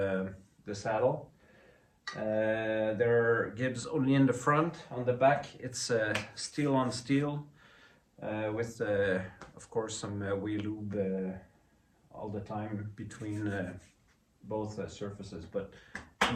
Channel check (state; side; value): identical; both; correlation 1.00